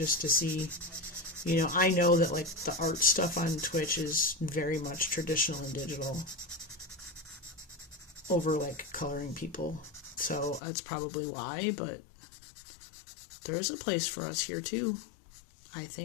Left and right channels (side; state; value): right; drops out; at 10.6 s